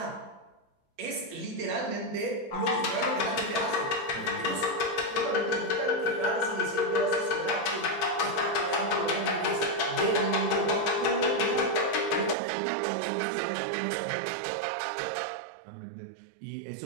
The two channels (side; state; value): left; drops out; at 12.4 s